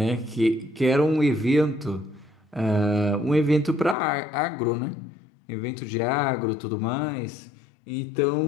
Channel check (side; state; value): right; drops out; at 4.0 s